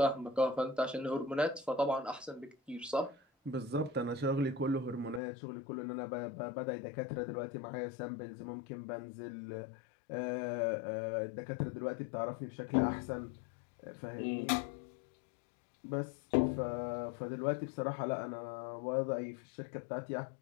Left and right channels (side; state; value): right; drops out; at 5.2 s